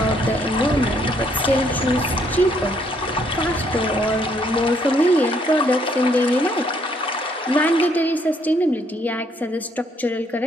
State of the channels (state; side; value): normal; both; correlation 0.69